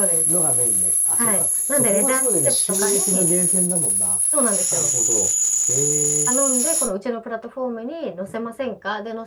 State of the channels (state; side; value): identical; both; correlation 1.00